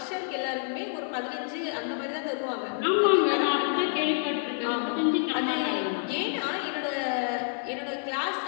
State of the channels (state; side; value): silent; right; digital silence